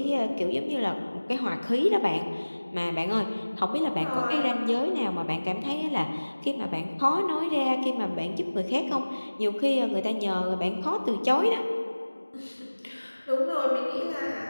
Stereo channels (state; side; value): inverted; both; correlation -1.00